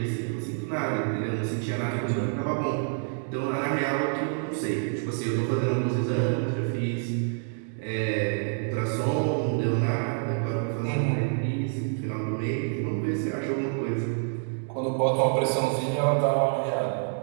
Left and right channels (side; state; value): left; silent; 60 dB below the other